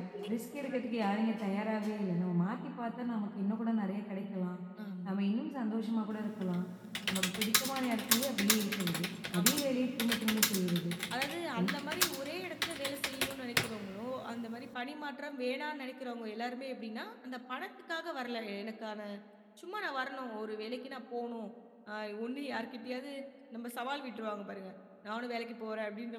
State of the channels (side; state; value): both; identical; correlation 1.00